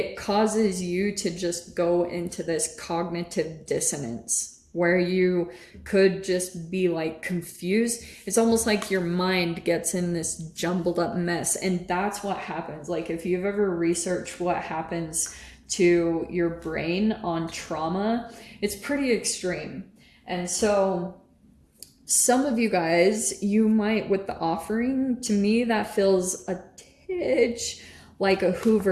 causes you to just go into this cognitive dissonance where you could just be like confused. It's almost like your mind gets in this jumbled up mess. And that's what happens. Like, if you've ever researched what happens to your brain on trauma, it's pretty extreme. And so some of you guys, you might, with the offering, to me, that feels a titch like a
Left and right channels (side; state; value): both; identical; correlation 1.00